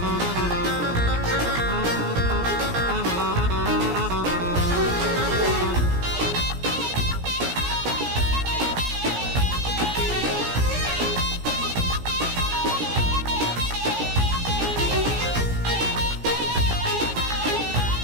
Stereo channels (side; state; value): left; late; 17 ms